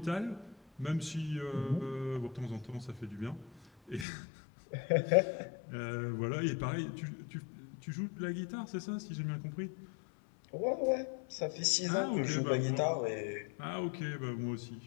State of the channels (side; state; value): right; drops out; at 4.0 s